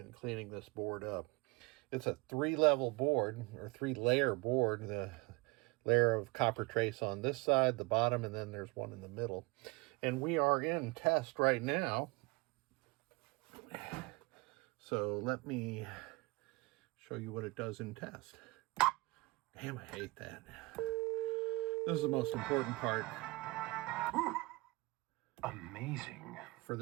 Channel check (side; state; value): left; quieter; 25.0 dB